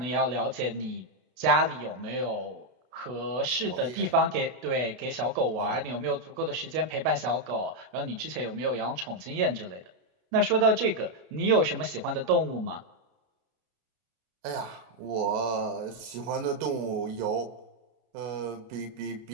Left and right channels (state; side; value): late; left; 32 ms